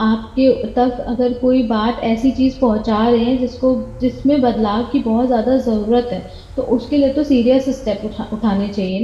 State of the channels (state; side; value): identical; both; correlation 1.00